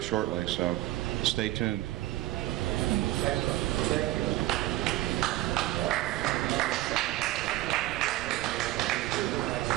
shortly. So stay tuned.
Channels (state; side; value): quieter; left; 16.3 dB